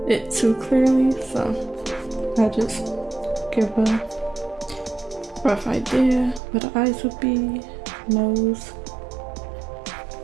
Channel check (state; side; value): drops out; left; at 6.4 s